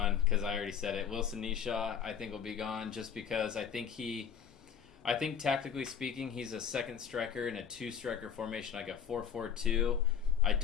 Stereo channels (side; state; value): right; quieter; 7.8 dB